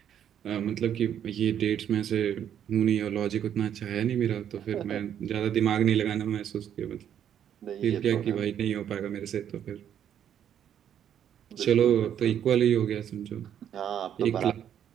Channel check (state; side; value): quieter; left; 9.6 dB